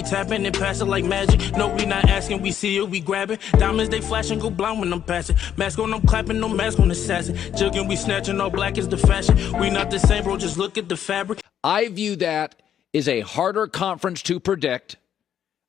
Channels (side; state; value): right; quieter; 9.7 dB